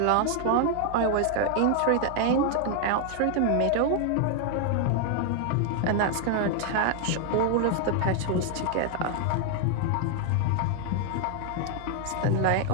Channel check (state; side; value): different; both; correlation 0.00